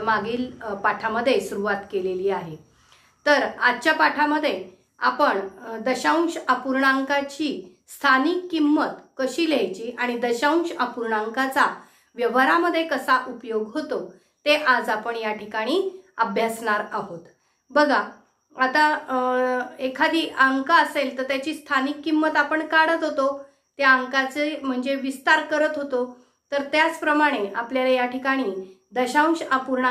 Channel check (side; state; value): both; identical; correlation 1.00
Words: मागील पाठामध्ये सुरुवात केलेली आहे। तर आजच्या पाठामध्ये आपण दशांश अपूर्णांकाची स्थानिक किंमत कशी लिहायची आणि दशांश अपूर्णांकाचा व्यवहारामध्ये कसा उपयोग होतो ते आज आपण या ठिकाणी अभ्यासणार आहोत। बघा, आता एखादी अंक असेल तर त्याची स्थानिक किंमत आपण काढत होतो, त्या अंकाचे म्हणजे विस्तार करत होतो। तर त्याचप्रमाणे आपल्याला या ठिकाणी दशांश